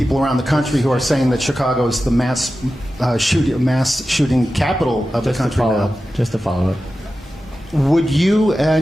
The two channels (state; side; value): normal; both; correlation 0.93